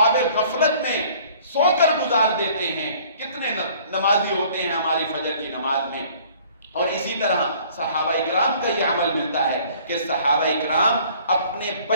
غفلت میں سو کر گزار دیتے ہیں. کتنے نمازی ہوتے ہیں ہماری فجر کی نماز میں. اور اسی طرح صحابہ اکرام کا یہ عمل ملتا ہے کہ صحابہ اکرام اپنے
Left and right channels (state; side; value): inverted; both; correlation -0.54